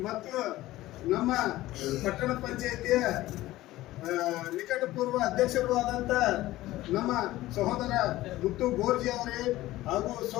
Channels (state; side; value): quieter; right; 16.5 dB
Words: ಮತ್ತು ನಮ್ಮ ಪಟ್ಟಣ ಪಂಚಾಯಿತಿಯ ನಿಕಟಪೂರ್ವ ಅಧ್ಯಕ್ಷರು ಆದಂತ ನಮ್ಮ ಸಹೋದರ ಮುತ್ತು ಗೋರ್ಜಿ ಅವರೇ ಹಾಗೂ